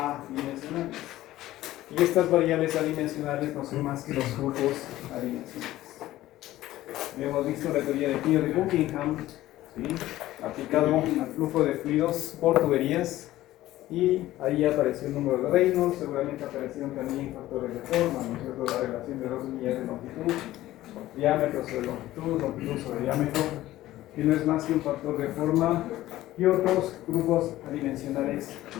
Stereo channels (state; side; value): quieter; right; 15.4 dB